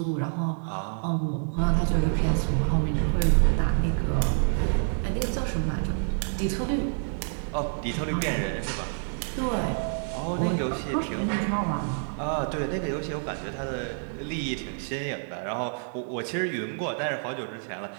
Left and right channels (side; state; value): left; silent; digital silence